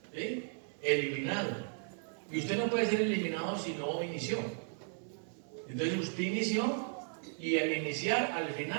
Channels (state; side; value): silent; left; 54 dB below the other